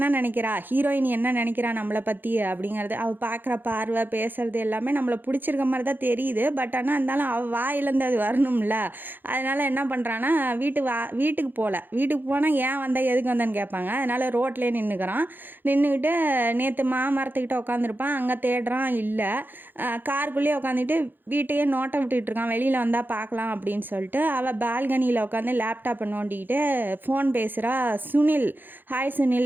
நினைக்கிறா, ஹீரோயின் என்ன நினைக்கிறா நம்மளை பற்றி அப்படிங்கிறது, அவள் பார்க்குற பார்வை பேசுறது எல்லாமே நம்மளை பிடிச்சிருக்க மாதிரி தான் தெரியுது. பட் ஆனால் இருந்தாலும் அவள் வாயிலேருந்து அது வரணும்ல. அதனால் என்ன பண்ணுறான்னா, வீட்டுக்கு போகல, வீட்டுக்கு போனால் ஏன் வந்தால் எதுக்கு வந்தேன்னு கேட்பாங்க. அதனால் ரோட்லேயே நின்றுக்கிட்டு நேற்று மாமரத்துக்கிட்ட உட்காந்துருப்பான், அங்கே தேடுறான் இல்லை, காருக்குள்ளேயே உட்காந்துட்டு வீட்டையே நோட்டை விட்டுட்டு இருக்கான், வெளியில் வந்தால் பார்க்கலாம் அப்படின்னு சொல்லிட்டு அவள் பால்கனியில் உட்காந்து லேப்டாப்பை நோண்டிக்கிட்டு ஃபோன் பேசுகிறா. சுனில், ஹாய்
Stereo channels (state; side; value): late; left; 0.092 ms